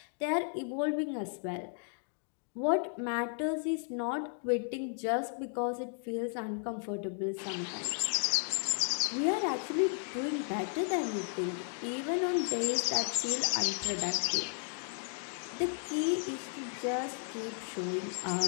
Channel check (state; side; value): silent; right; 55 dB below the other